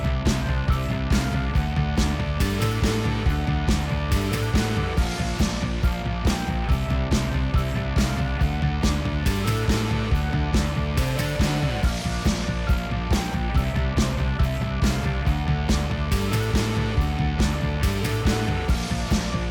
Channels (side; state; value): both; identical; correlation 1.00